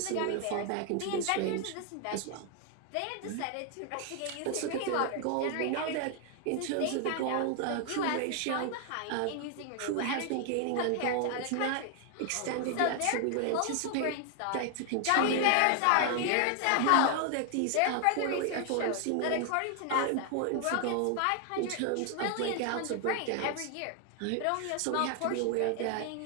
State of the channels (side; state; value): both; different; correlation 0.00